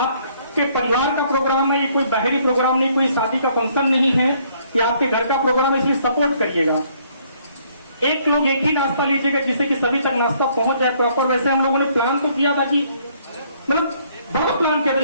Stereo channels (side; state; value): both; inverted; correlation -0.65